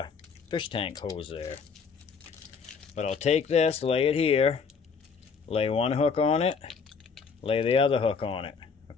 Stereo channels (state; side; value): quieter; right; 5.6 dB